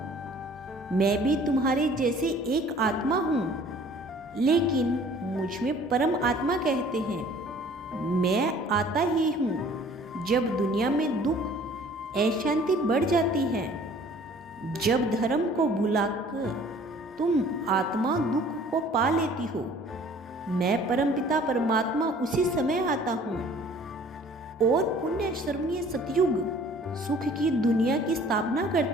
मैं भी तुम्हारे जैसे एक आत्मा हूँ, लेकिन मुझ में परम आत्मा कहते हैं। मैं आता ही हूँ जब दुनिया में दुख अशांति बढ़ जाती है, जब धर्म को भुलाकर तुम आत्मा दुख को पा लेती हो। मैं परमपिता परमात्मा उसी समय आता हूँ और पुण्य स्मरणीय सतयुग सुख की दुनिया की स्थापना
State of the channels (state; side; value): normal; both; correlation 0.52